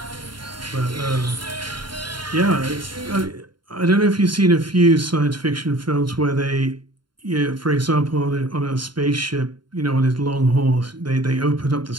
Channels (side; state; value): left; late; 0.72 ms